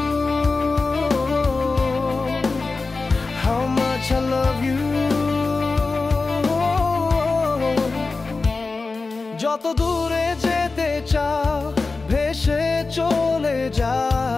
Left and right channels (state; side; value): quieter; right; 3.9 dB